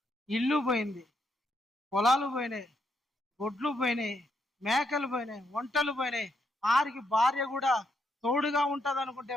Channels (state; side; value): normal; both; correlation 0.78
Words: ఇల్లు పోయింది, పొలాలు పోయినాయి, గొడ్లు పోయినాయి, మేకలు పోయినాయి, వంటలు పోయినాయి. ఆరికి భార్య కూడా తోడుగా ఉంటది అనుకుంటే